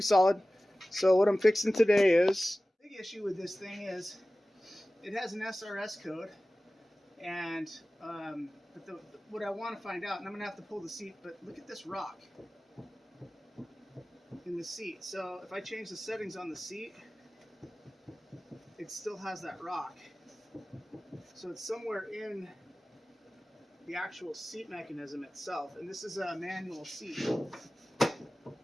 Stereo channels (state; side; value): normal; both; correlation 0.97